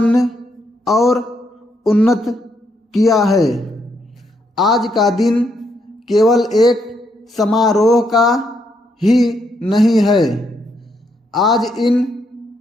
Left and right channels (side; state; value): both; normal; correlation 0.76